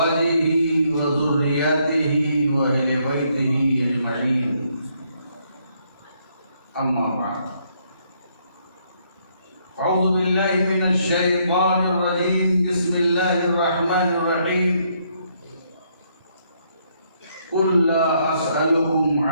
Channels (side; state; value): both; inverted; correlation -0.72